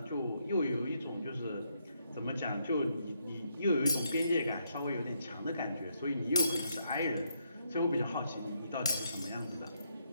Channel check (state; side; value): inverted; both; correlation -0.76